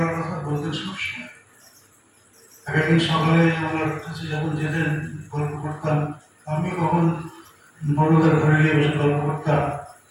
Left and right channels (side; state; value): both; identical; correlation 1.00